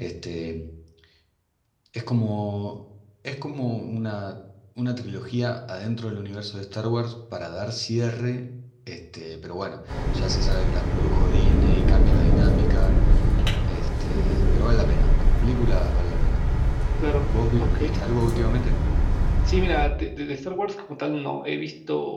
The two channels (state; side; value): identical; both; correlation 1.00